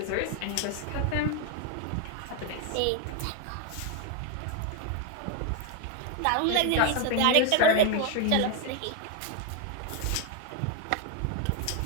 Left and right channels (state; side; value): different; both; correlation 0.01